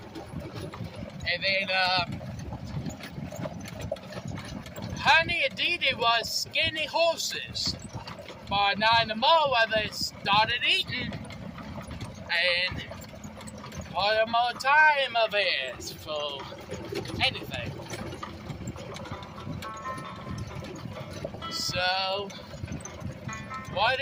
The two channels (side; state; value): both; identical; correlation 1.00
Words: And then, Honey and Dee Dee was skinny horses. By 9 in the morning, they started eating, and what more time of it for anything. So, what